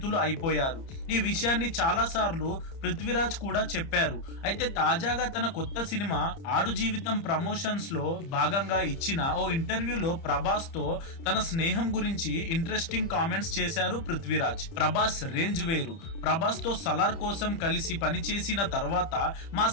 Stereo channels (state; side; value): late; right; 30 ms